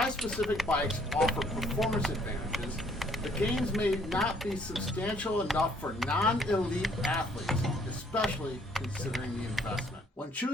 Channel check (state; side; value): normal; both; correlation 0.63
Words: bikes offer performance advantages, the gains may not be substantial enough for non-elite athletes, especially considering the investment. When